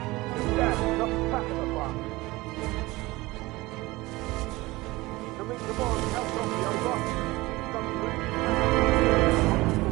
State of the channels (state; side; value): quieter; left; 20.6 dB